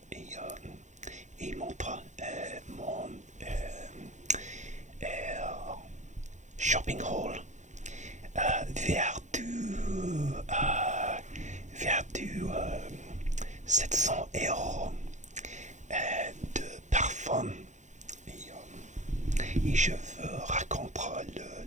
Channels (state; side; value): late; left; 0.35 ms